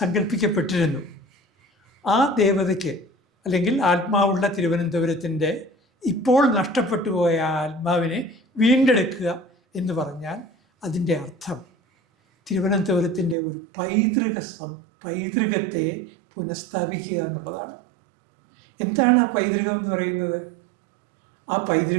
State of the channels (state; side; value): drops out; left; at 13.4 s